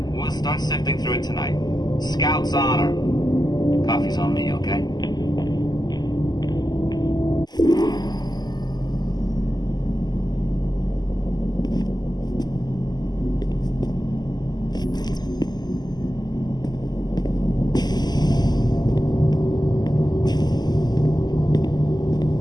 We'll start sifting through it tonight. Scout's honor. Coffee's on me, okay?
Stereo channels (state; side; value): late; right; 0.20 ms